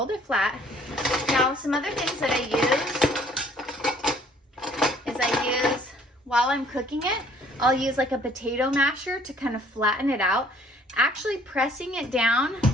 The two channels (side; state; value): both; normal; correlation 0.59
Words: it flat. Now, some other things that I use while I'm cooking it, I'll use like a potato masher to kind of flatten it out. Actually, pressing it down